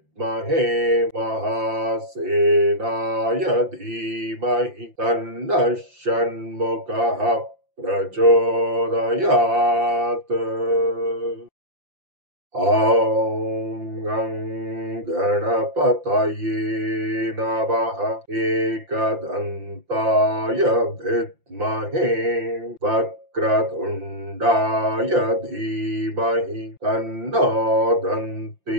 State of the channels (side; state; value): left; late; 5.8 ms